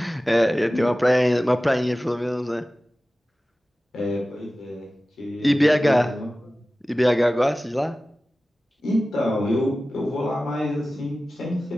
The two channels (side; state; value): both; normal; correlation 0.96